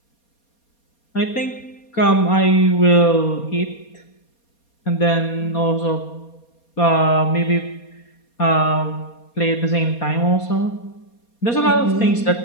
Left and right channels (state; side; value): late; right; 4.2 ms